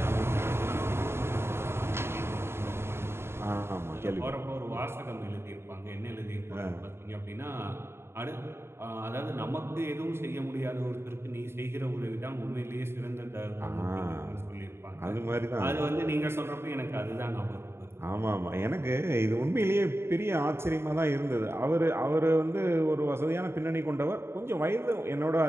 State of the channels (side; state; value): left; late; 0.12 ms